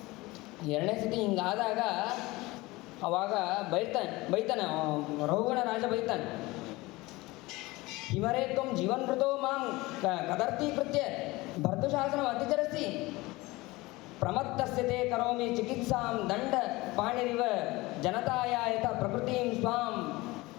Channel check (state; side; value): quieter; right; 21.2 dB